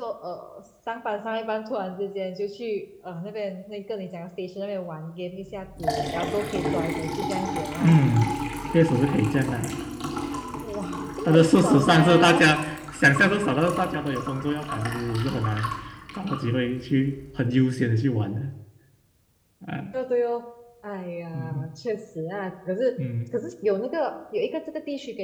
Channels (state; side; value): identical; both; correlation 1.00